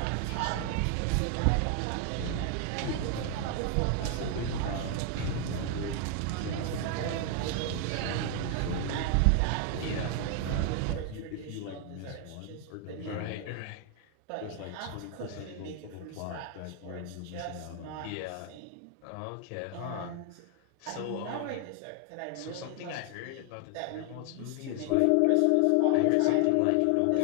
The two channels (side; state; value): both; different; correlation 0.00